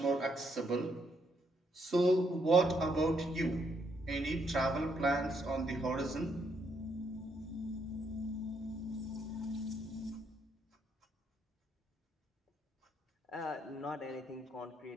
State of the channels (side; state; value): both; normal; correlation 0.75